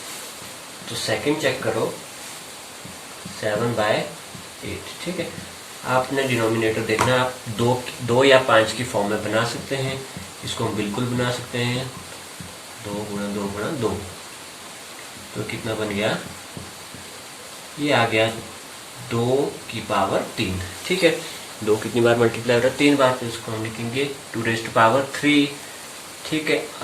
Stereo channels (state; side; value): identical; both; correlation 1.00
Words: तो सेकंड चेक करो 7/8, ठीक है, आपने डिनोमिनेटर देखना, आप 2 या 5 की फॉर्म में बना सकते हैं, इसको हम बिल्कुल बना सकते हैं 2 गुणा 2 गुणा 2, तो कितना बन गया, ये आ गया 2 की पावर 3, ठीक है, 2 कितनी बार मल्टीप्लाई हो रहा है, 3 बार, तो इसको हम लिखेंगे 2 रेज़ टू पावर 3, ठीक है।